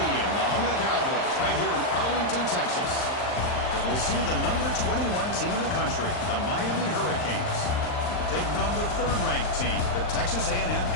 the home of the Cowboys, right here in Arlington, Texas. As we'll see the number 21 team in the country, the Miami Hurricanes, taking on the third-ranked team, the Texas A&M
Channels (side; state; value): right; late; 39 ms